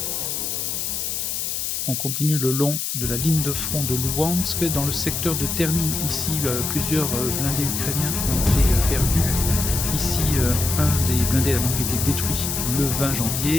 On continue le long de la ligne de front de Luhansk. Dans le secteur de Terny, ici, plusieurs blindés ukrainiens ont été perdus. Ici, un des blindés a donc été détruit le 20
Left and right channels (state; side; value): noise; left; hiss, 2 dB below the sound